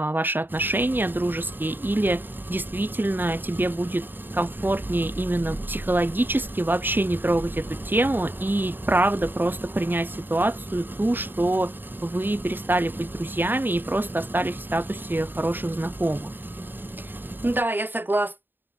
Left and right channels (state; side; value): late; left; 0.094 ms